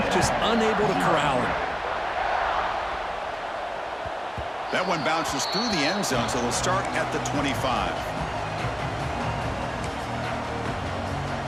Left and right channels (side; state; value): both; identical; correlation 1.00